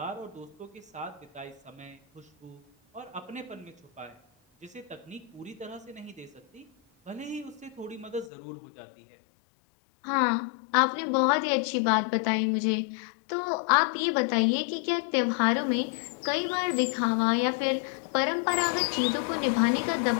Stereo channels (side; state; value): right; drops out; at 8.3 s